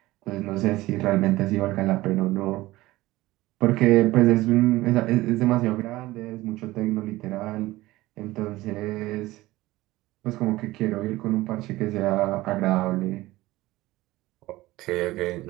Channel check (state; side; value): quieter; left; 18.1 dB